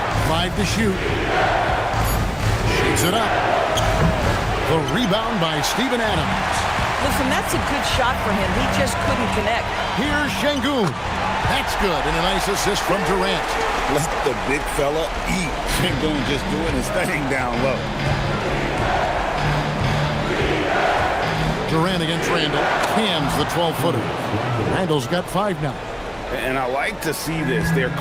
Five to shoot. Shoots it up. The rebound by Steven Adams. Listen, that's a good shot for him. He just couldn't connect. Here's Şengün. That's good, and a nice assist from Durant. Let the big fella eat. Şengün just doing his thing down low. Durant against Randall. Cams the 12-footer. Randall's got 5 now. And I like to see this. They're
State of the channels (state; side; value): identical; both; correlation 1.00